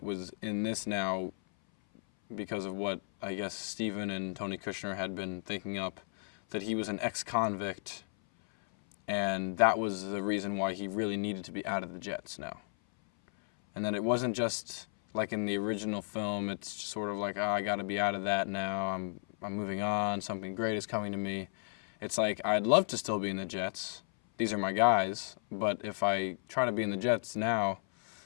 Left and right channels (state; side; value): silent; right; 55 dB below the other